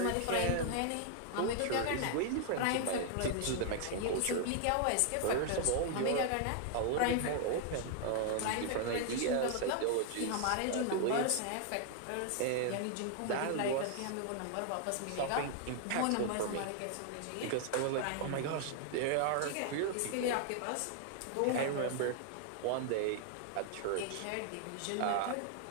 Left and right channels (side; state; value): both; different; correlation 0.00